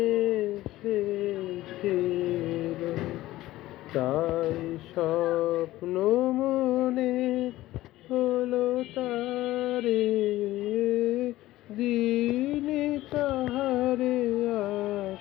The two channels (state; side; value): quieter; right; 16.2 dB